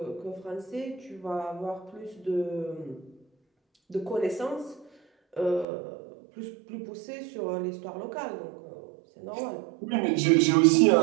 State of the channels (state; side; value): drops out; left; at 5.7 s